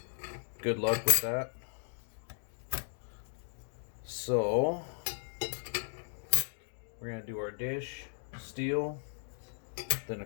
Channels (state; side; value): silent; right; digital silence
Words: good luck with that. So we're going to do our dish, steel, then